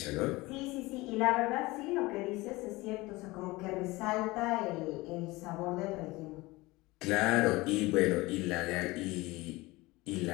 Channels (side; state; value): right; quieter; 21.3 dB